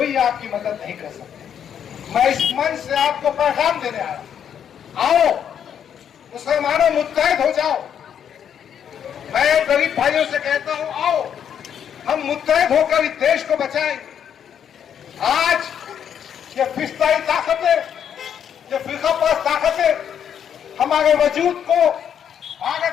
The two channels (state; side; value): quieter; right; 8.7 dB